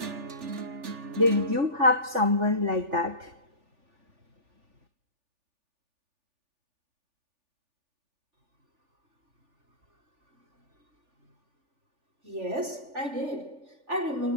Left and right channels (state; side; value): late; left; 3.4 ms